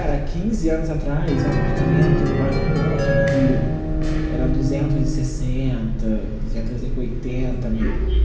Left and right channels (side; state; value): both; identical; correlation 1.00